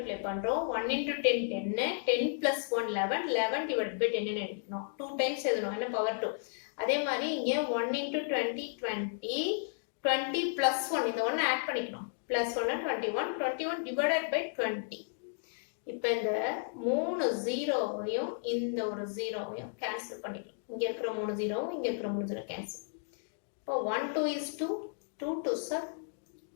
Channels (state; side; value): silent; right; digital silence